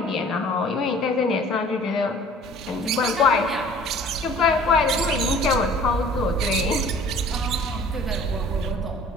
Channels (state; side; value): normal; both; correlation 0.50